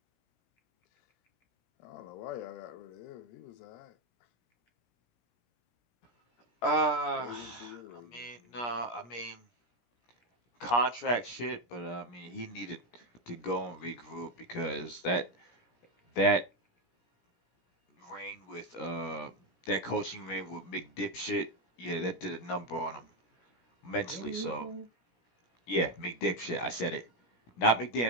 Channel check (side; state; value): right; late; 17 ms